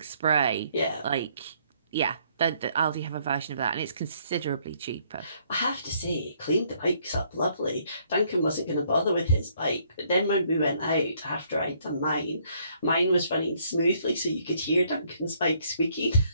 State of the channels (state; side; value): inverted; both; correlation -0.67